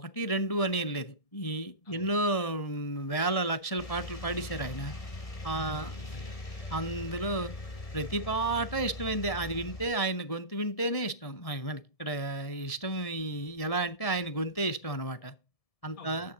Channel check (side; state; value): right; late; 1.7 ms